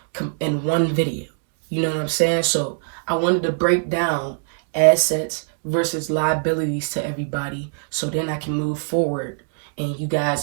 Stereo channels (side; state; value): left; silent; 64 dB below the other